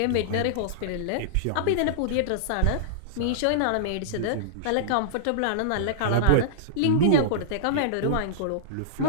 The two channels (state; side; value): different; both; correlation -0.02